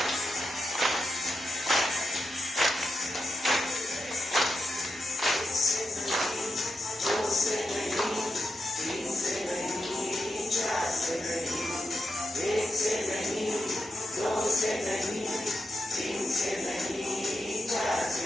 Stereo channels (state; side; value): normal; both; correlation 0.87